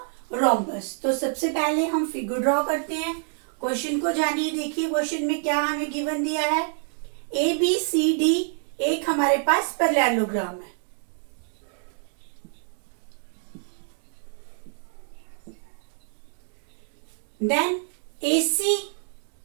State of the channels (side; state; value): left; silent; 60 dB below the other